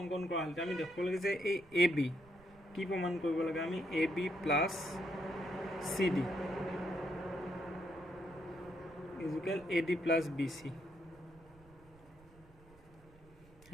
কৰা হল আমি দেখব লাগে যে এই AB কি প্ৰমাণ কৰিব লাগে আমি AB + CD equal AD + BC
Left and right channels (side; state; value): right; noise; rumble, 25 dB below the sound